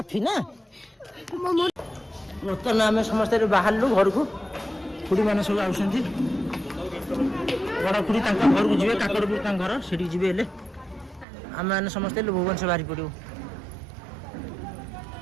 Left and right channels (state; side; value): drops out; left; at 11.2 s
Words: ना बर्तमान आम समस्त बाहर घर को खुड़ी मैंने सब आस बड़ खुड़ी घर को जी काकड़पुर घर से जी आम मैंने समस्त भुवनेश्वर बाहरी पड़ो